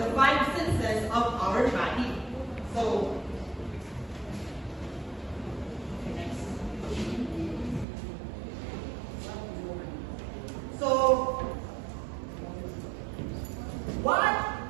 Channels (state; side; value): drops out; left; at 7.9 s